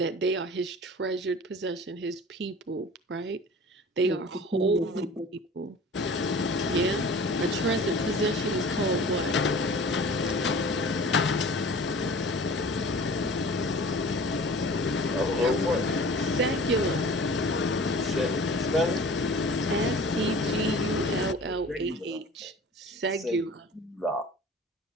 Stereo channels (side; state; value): both; normal; correlation 0.43